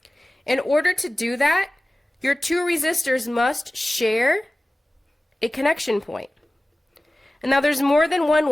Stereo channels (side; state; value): both; normal; correlation 0.97